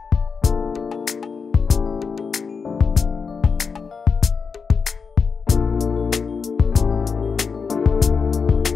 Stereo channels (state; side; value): quieter; right; 5.5 dB